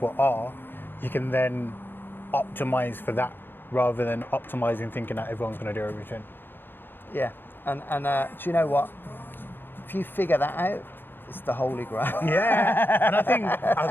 are, you can then optimize for that rather than optimizing thinking that everyone's going to do everything. Yeah. And do you know what? If you figure that out, it's the holy grail. Yeah, and I think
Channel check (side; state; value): right; late; 0.099 ms